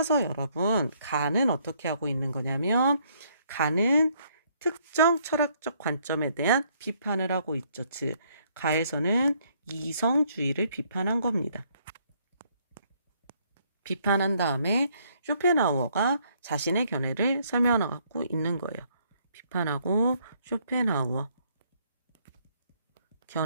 여러분, 가는 어떻게 하고 있는 거냐면 가는 특정 철학적 관점에 대한 비판을 하고 있죠. 즉, 가에서는 이성주의를 비판한 겁니다. 비판한 다음에 쇼펜하우어가 자신의 견해를 설명하고 있는 거예요. 비판하고 쇼펜하우어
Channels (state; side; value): inverted; both; correlation -0.67